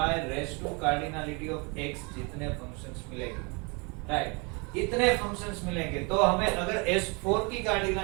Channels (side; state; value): left; quieter; 30.9 dB